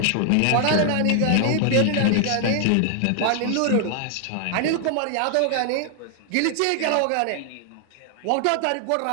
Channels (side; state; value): both; different; correlation 0.00